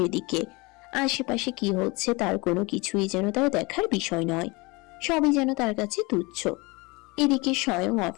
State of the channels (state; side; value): quieter; right; 25.6 dB